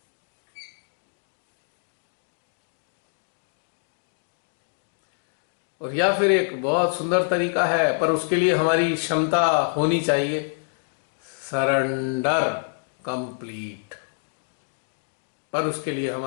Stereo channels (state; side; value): silent; right; digital silence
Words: और या फिर एक बहुत सुंदर तरीका है, पर उसके लिए हमारी क्षमता होनी चाहिए, सरेंडर कंप्लीट। पर उसके लिए